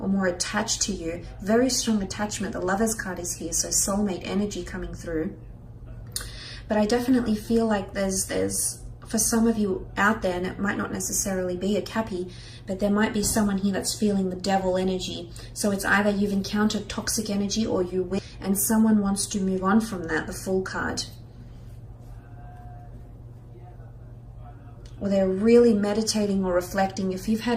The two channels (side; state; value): both; identical; correlation 1.00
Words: more attached to you. Very strong attachment. The Lovers card is here, so soulmate energy coming through. But I definitely feel like there's for some of you out there, and it might not necessarily be a Cappy, but there might be someone here that's feeling the Devil energy. So it's either you've encountered toxic energy or you will, and someone wants to move on from that, the Fool card. Or they're really meditating or reflecting. If you've